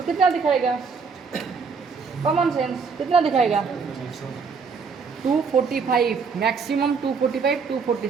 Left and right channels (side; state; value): left; quieter; 5.3 dB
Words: कितना दिखाएगा? कॉमन सेंस कितना दिखाएगा? 245 मैक्सिमम, 245 240